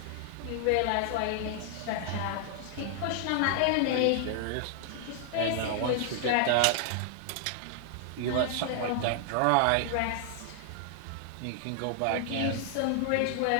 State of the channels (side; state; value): both; different; correlation 0.00